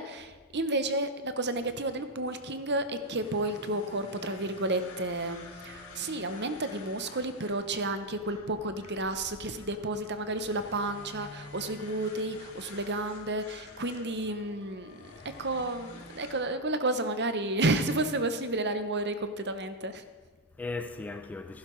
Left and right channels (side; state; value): both; normal; correlation 0.01